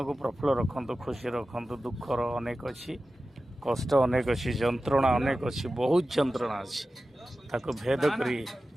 को प्रफुल्ल रखु खुशी रखु दुखर अनेक अच्छी कष्ट अनेक अच्छी जंत्रणा अनेक अच्छी बहुत जंत्रणा अच्छी ताको भेद करी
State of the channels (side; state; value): both; normal; correlation 0.94